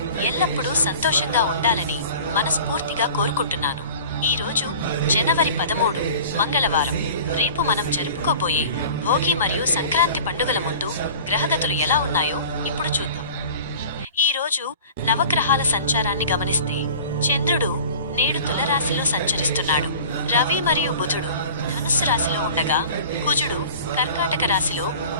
ఎల్లప్పుడూ సంతోషంగా ఉండాలని మనస్ఫూర్తిగా కోరుకుంటున్నాను. ఈరోజు జనవరి 13 మంగళవారం. రేపు మనం జరుపుకోబోయే భోగి మరియు సంక్రాంతి పండుగల ముందు గ్రహగతులు ఎలా ఉన్నాయో ఇప్పుడు చూద్దాం. ఈరోజు నవగ్రహాల సంచారాన్ని గమనిస్తే చంద్రుడు నేడు తులరాశిలో సంచరిస్తున్నాడు. రవి మరియు బుధుడు ధనుస్సు రాశిలో ఉండగా కుజుడు కర్కాటక రాశిలో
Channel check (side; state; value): both; inverted; correlation -0.42